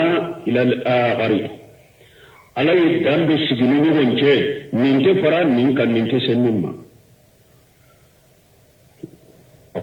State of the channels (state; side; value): identical; both; correlation 1.00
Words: ila al-akhari ala ye dan do sigi ni ɲɔgɔn cɛ nin tɛ fara nin kan nin tɛ se min ma a